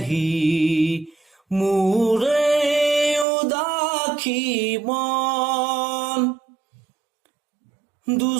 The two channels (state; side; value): drops out; left; at 3.2 s